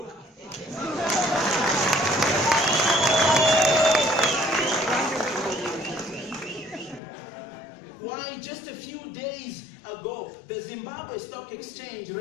Why, just a few days ago, the Zimbabwe Stock Exchange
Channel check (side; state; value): right; drops out; at 7.0 s